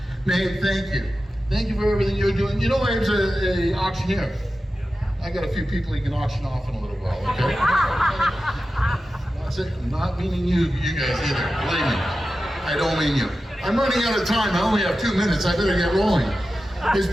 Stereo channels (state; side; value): normal; both; correlation 0.93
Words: Nate, thank you. Thank you for everything you're doing. You know, I was an auctioneer. I got a few people you can auction off in a little while, okay? That's it. I'm not meaning you guys either. Believe me. I don't mean you. I'm running out of time. I only have 2 minutes. I better get rolling. It's